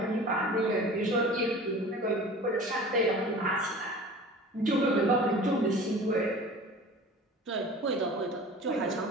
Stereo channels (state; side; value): normal; both; correlation 0.40